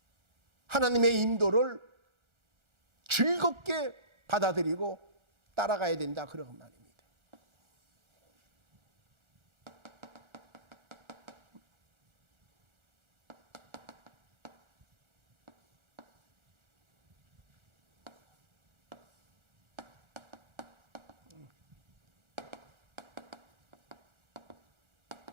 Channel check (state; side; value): late; left; 1.4 ms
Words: 하나님의 인도를 즐겁게 받아들이고 따라가야 된다 그런 말입니다.